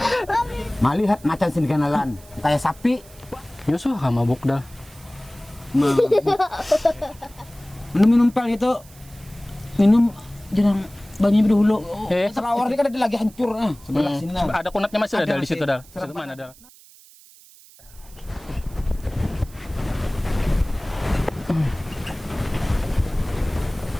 Malihat macan sindganalan kayak sapi. Yusuf mabuk dah. Minum pel itu. Minum jarang banyak dulu. Selawar ini kan ada lagi hancur sebelah sini. Ada kunatnya masih ada di situ dah. Di situ Serem mana dah?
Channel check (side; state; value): right; noise; hiss, 24 dB below the sound